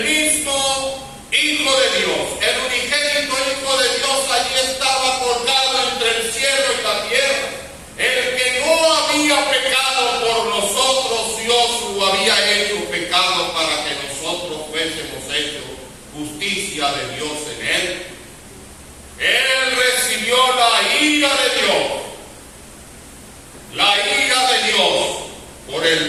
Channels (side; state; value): both; identical; correlation 1.00